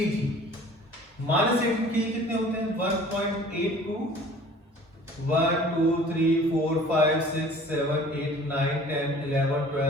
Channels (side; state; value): both; normal; correlation 0.48